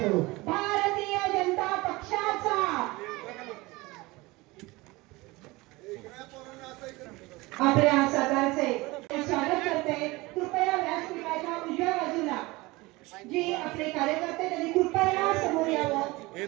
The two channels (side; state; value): left; quieter; 22.1 dB